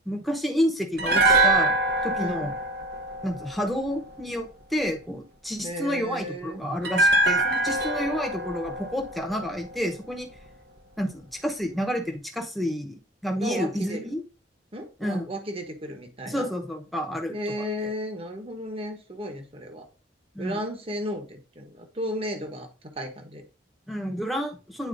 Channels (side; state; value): both; normal; correlation 0.43